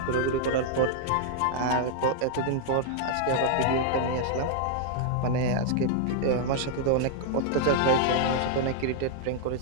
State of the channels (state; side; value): different; both; correlation -0.01